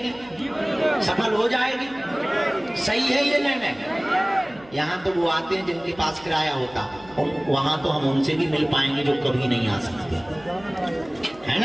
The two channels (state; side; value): noise; right; hum, 24 dB below the sound